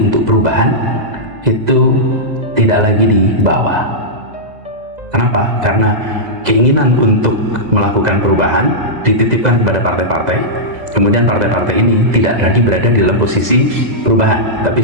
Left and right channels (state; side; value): late; left; 2.0 ms